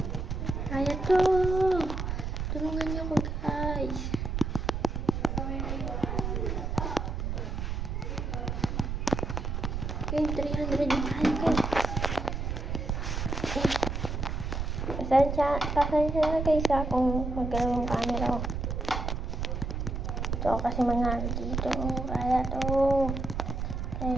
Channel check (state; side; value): noise; right; rumble, 2 dB below the sound